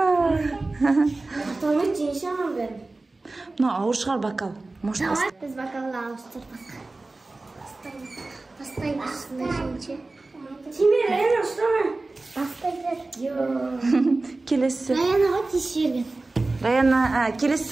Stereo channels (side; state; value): left; quieter; 3.2 dB